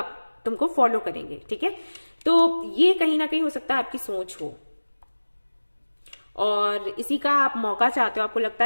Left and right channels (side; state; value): both; inverted; correlation -1.00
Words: तुमको फॉलो करेंगे। ठीक है, तो ये कहीं ना कहीं हो सकता है आपकी सोच हो और इसी का आप मौका चाहते हो। आपको लगता